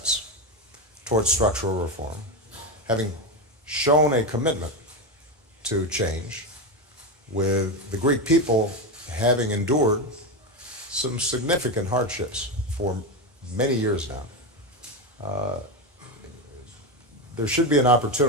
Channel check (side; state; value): both; normal; correlation 0.13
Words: towards structural reform, having shown a commitment to change, with the Greek people having endured some significant hardships for many years now, there should be an